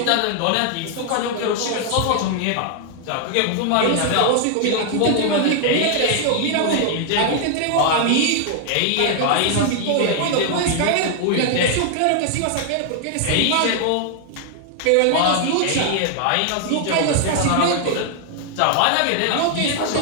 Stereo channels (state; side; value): different; both; correlation 0.00